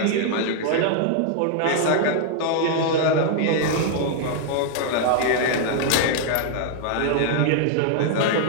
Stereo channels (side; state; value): both; different; correlation -0.01